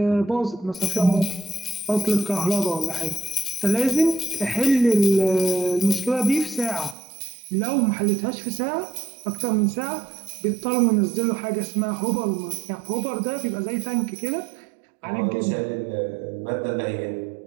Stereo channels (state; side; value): drops out; left; at 7.0 s